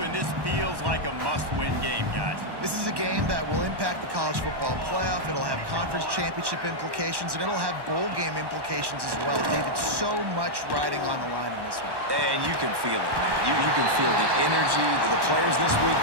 and this feels like a must-win game, guys. This is a game that will impact the college football playoff. It'll have conference championship implications, and it'll have bowl game implications as well. David, so much riding on the line in this one. And you can feel it, man. You can feel the energy. The players this week,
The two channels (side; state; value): left; late; 1.1 ms